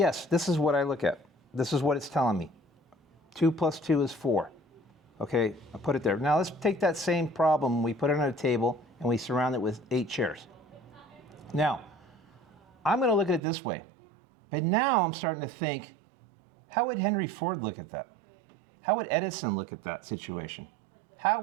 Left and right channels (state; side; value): drops out; left; at 13.4 s